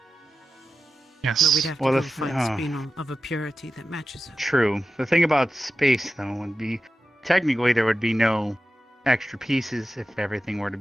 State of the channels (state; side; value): normal; both; correlation 0.92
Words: Yes. But we'd have to go find spinel of a purity that matches it. True. The thing about space, though, would be technically there would be no extra pieces if everything were to